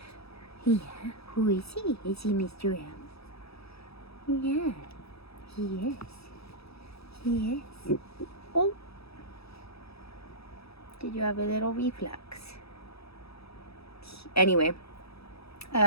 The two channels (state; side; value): late; right; 0.77 ms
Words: Yeah, who is he? Is he Mr. M? Yeah, he is. He is. Oh. Did you have a little reflux? Anyway,